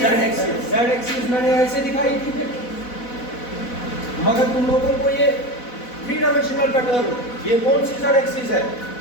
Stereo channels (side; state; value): right; late; 4.1 ms